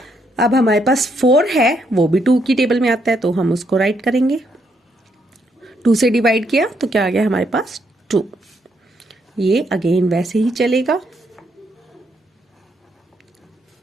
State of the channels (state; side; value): normal; both; correlation 0.75